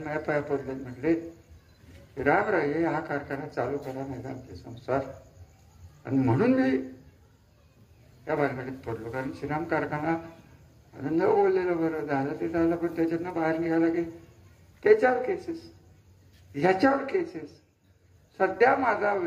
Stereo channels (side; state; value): both; identical; correlation 1.00